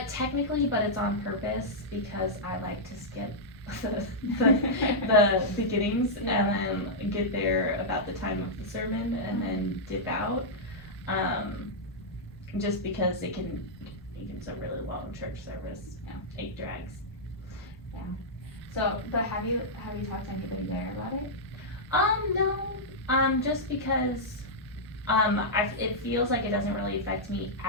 Technically, but it's on purpose because I like to skip the beginnings Yeah. and then get there about the time of the sermon and then dip out. Just because it can so really long church service. Yeah. It drags. So, but have you talked to anybody there about it? No. Just because it feels like it doesn't really affect me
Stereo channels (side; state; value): both; normal; correlation -0.08